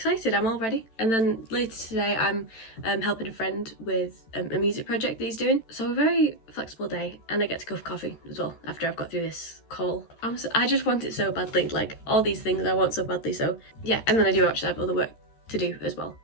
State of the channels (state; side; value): late; right; 13 ms